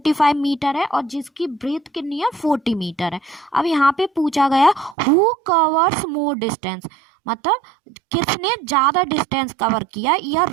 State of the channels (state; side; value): drops out; left; at 5.0 s